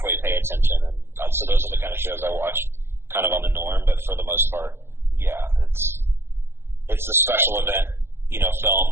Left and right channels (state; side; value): late; left; 0.11 ms